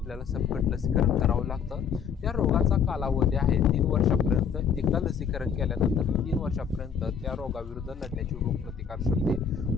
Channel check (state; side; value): quieter; right; 7.0 dB